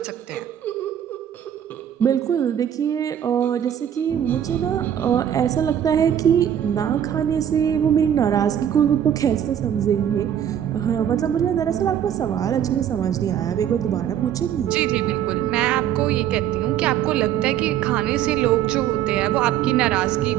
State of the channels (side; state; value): left; quieter; 9.9 dB